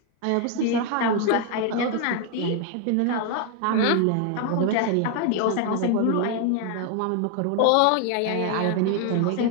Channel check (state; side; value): different; both; correlation 0.00